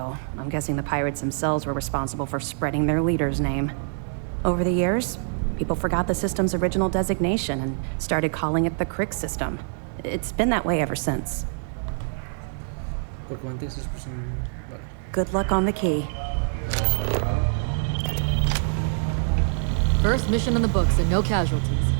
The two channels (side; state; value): left; silent; 57 dB below the other